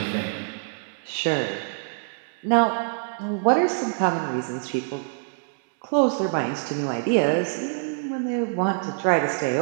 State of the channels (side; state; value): left; silent; digital silence